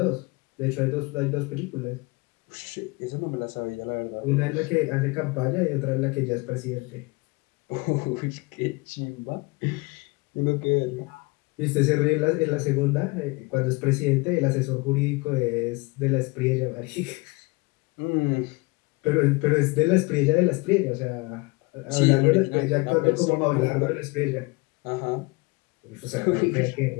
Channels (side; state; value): right; quieter; 25.6 dB